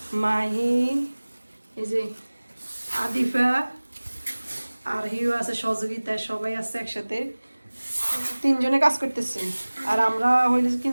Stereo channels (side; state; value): both; inverted; correlation -1.00